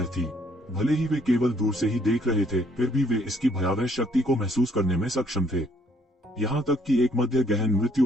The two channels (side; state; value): both; normal; correlation 0.65